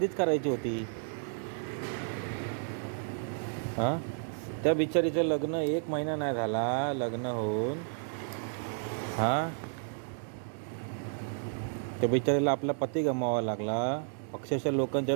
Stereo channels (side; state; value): left; silent; digital silence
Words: करायची होती. हां, त्या बिचारीचं लग्न 1 महिना नाही झाला लग्न होऊन. हां, त्या बिचारीला आपला पती गमावा लागला. अक्षरशः लोकांच्या